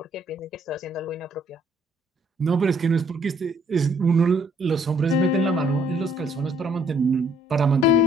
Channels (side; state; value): both; normal; correlation 0.63